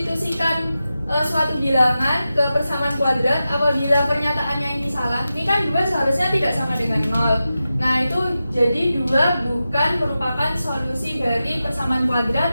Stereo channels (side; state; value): both; inverted; correlation -0.92